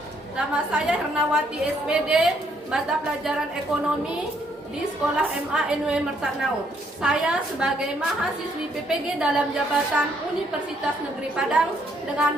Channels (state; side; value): normal; both; correlation 0.70